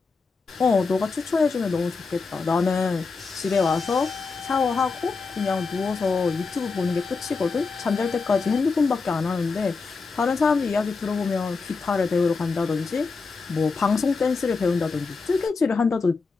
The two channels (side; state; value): right; quieter; 4.5 dB